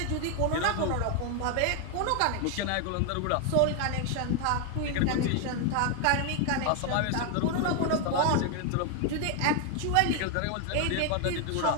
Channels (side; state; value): both; different; correlation 0.01